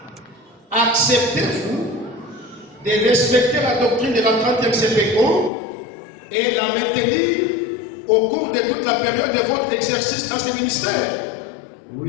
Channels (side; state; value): right; drops out; at 5.5 s